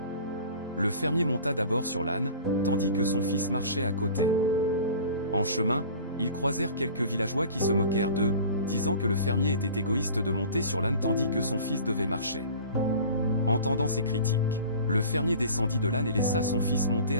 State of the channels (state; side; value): inverted; both; correlation -0.42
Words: Le fermier monta d'abord sur l'âne, tandis que son fils marchait à côté. En chemin, ils croisèrent quelques villageois qui se moquèrent d'eux, disant que le fermier était égoïste de monter sur l'âne tandis que son fils devait marcher. Entendant ces critiques, le fermier descendit de l'âne et laissa son fils monter